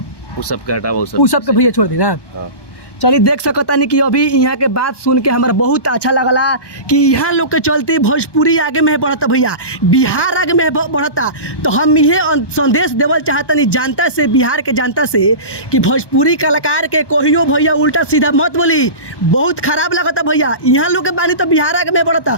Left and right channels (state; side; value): late; right; 1.2 ms